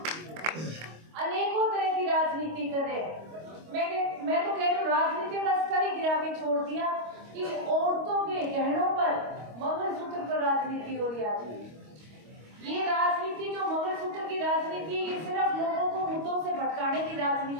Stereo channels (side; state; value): left; late; 25 ms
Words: अनेकों तरह की राजनीति कर रहे हैं। मैं तो कह रही हूँ राजनीति का स्तर ही गिरा के छोड़ दिया कि औरतों के गहनों पर, मंगलसूत्र पर राजनीति हो रही है। ये राजनीति जो मंगलसूत्र की राजनीति, ये सिर्फ लोगों को मुद्दों से भटकाने की